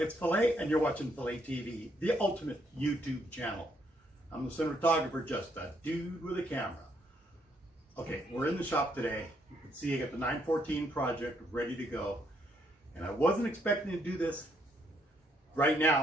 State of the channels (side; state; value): both; normal; correlation 0.72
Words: PHILA, and you're watching PHILA TV, the ultimate YouTube channel. I'm the cinematographer, just a dude with a camera. Okay, we're in the shop today. You can see I got the 914 project ready to go. And I wasn't expecting to do this right